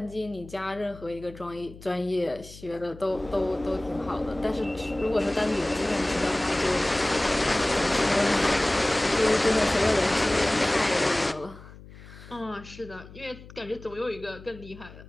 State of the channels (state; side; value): noise; left; hum, 18 dB below the sound